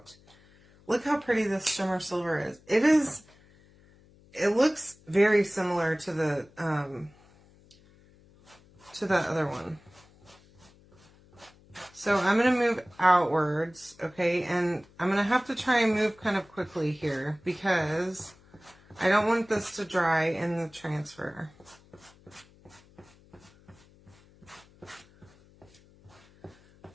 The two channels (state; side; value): noise; left; hum, 27 dB below the sound